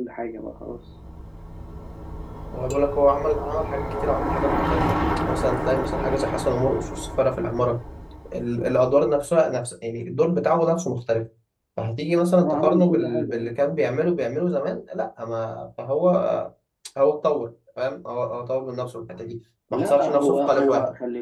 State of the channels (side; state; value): both; identical; correlation 1.00